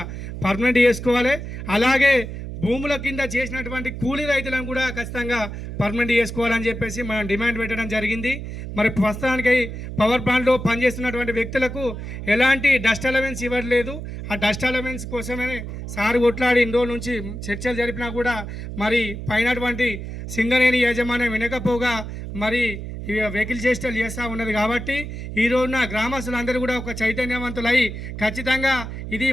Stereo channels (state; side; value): noise; right; hum, 8 dB below the sound